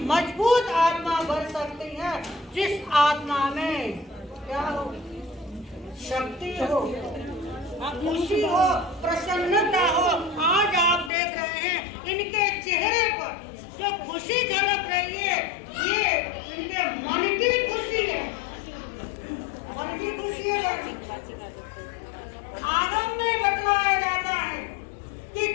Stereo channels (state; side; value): drops out; right; at 11.1 s